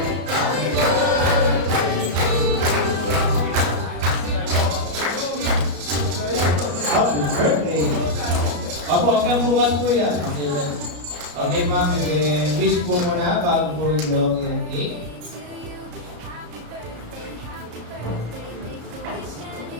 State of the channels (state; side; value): late; left; 34 ms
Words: Huwag kang bukas po yan. Okay, ma'am. Wish po muna bago po yung long yung cake.